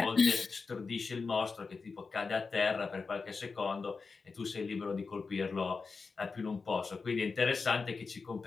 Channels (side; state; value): right; quieter; 4.6 dB